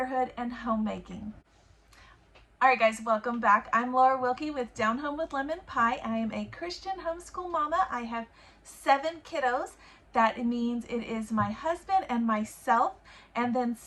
and homemaking. All right, guys, welcome back. I'm Laura Wilkie with Down Home with Lemon Pie. I am a Christian homeschool mama. I have 7 kiddos. That means it is my husband and myself and then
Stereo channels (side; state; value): both; identical; correlation 1.00